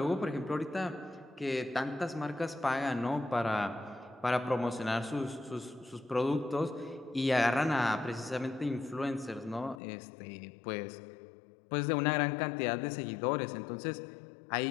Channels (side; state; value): right; drops out; at 9.8 s